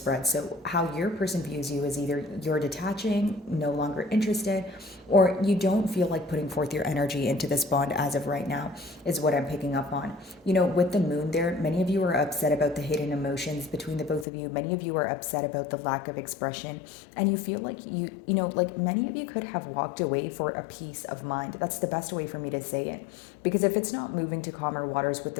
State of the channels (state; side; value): drops out; right; at 14.2 s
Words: So how your person views you is either you're detaching, no longer interested, or you don't feel like putting forth your energy into this bond as of right now, is what I'm picking up on. With the moon there, many of you are upset about the hidden emotions between the both of you. Many of you are upset about the lack of expression, and you feel like like many of you could have walked away for a peace of mind. That's the best way for me to say it. Because if it's not moving to calmer waters with